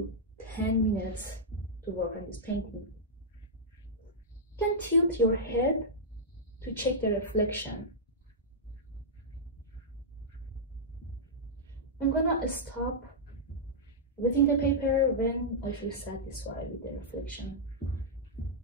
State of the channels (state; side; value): normal; both; correlation -0.10